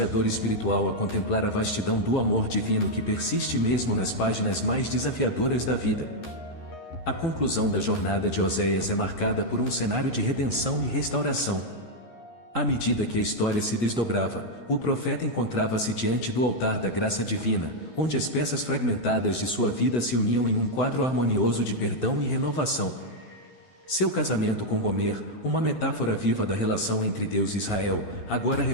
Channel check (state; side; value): late; right; 11 ms